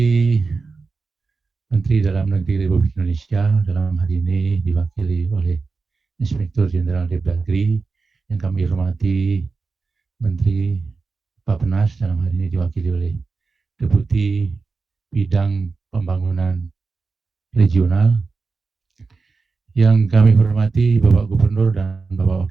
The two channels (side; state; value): left; quieter; 4.3 dB